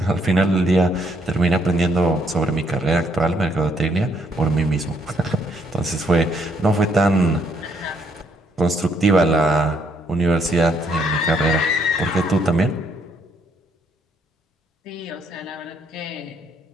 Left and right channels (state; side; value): normal; both; correlation 0.71